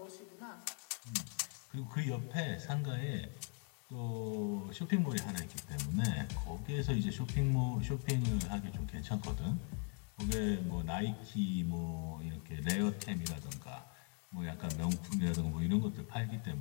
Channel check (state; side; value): quieter; right; 39.6 dB